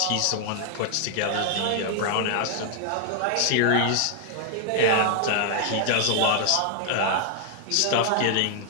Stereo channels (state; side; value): different; both; correlation 0.00